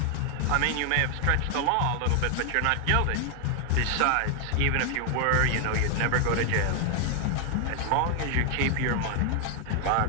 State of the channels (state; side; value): different; both; correlation 0.00